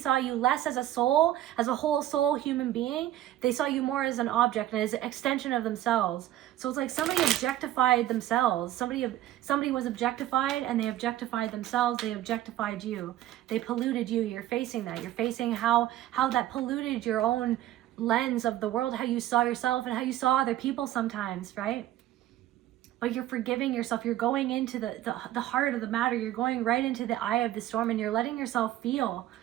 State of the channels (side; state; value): left; quieter; 13.6 dB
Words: you less as a soul, as a whole soul human being. They saw you more as an object and as an extension of themselves. So it's like somebody objectified themselves. Somebody was objectified, and they objectified themselves. They objectified you. They polluted you. You're facing that. You're facing how that polluted your own lens of the world, how you saw yourself and how you saw other people sometimes, right? But you're forgiving yourself. You're going into the heart of the matter. You're going right into the eye of the storm, and you're letting yourself feel